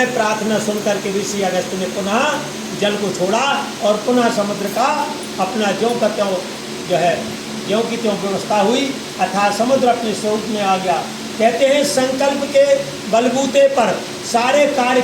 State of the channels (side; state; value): both; identical; correlation 1.00